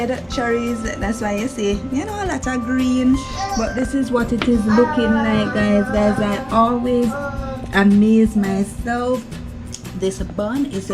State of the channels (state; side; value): identical; both; correlation 1.00